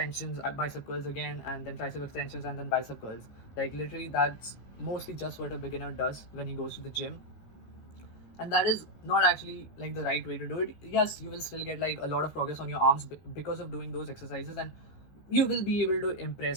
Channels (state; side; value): late; right; 16 ms